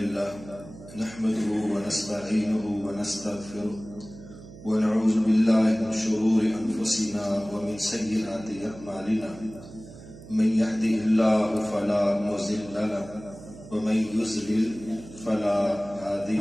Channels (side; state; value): right; noise; hum, 17 dB below the sound